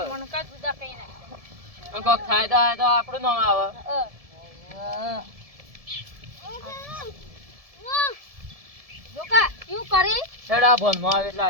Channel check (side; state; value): left; late; 1.7 ms